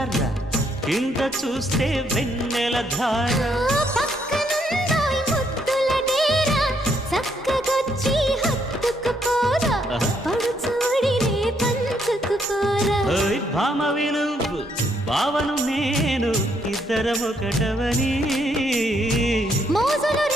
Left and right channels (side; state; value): both; normal; correlation 0.73